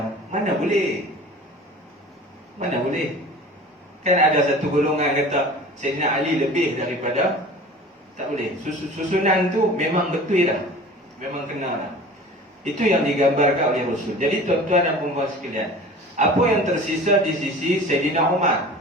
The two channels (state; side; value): normal; both; correlation 0.41